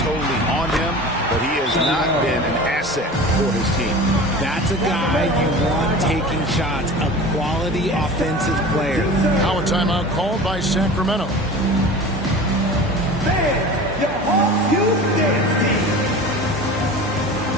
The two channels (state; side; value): normal; both; correlation 0.36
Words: on him, but he has not been an asset for his team. That's a guy you want taking shots, a quality offensive player. Now a timeout called by Sacramento. Man, your Hawks Youth Dance Team.